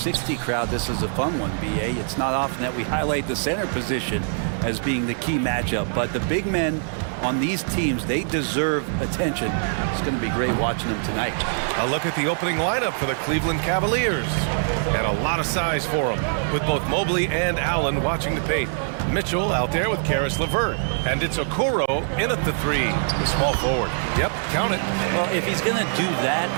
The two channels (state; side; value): silent; left; 56 dB below the other